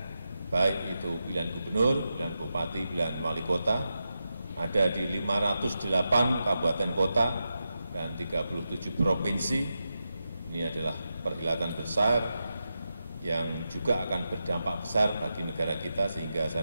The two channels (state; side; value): inverted; both; correlation -0.89